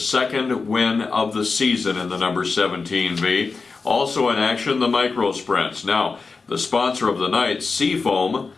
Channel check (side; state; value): right; quieter; 4.4 dB